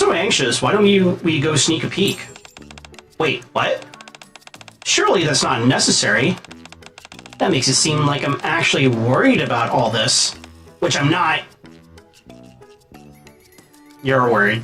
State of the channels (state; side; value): identical; both; correlation 1.00